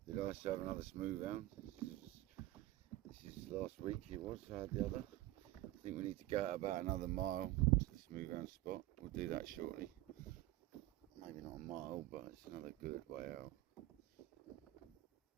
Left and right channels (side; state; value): left; quieter; 16.6 dB